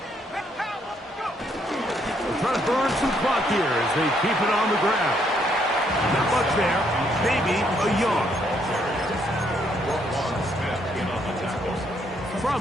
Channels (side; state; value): both; normal; correlation 0.71